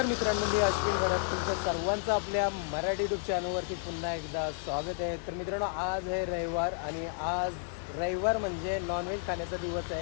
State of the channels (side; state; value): right; silent; digital silence